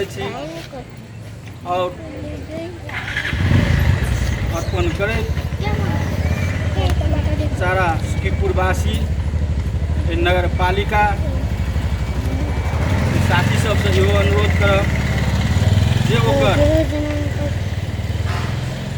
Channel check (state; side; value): identical; both; correlation 1.00